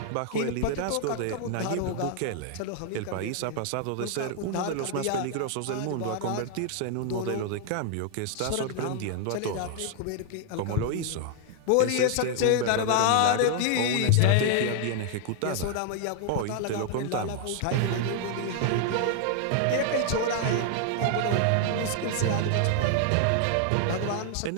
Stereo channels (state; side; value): different; both; correlation 0.00